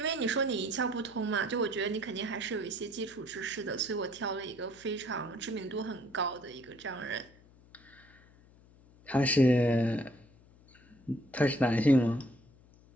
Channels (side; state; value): left; noise; hum, 26 dB below the sound